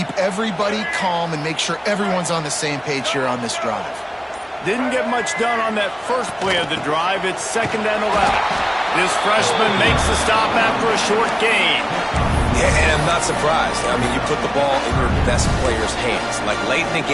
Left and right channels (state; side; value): identical; both; correlation 1.00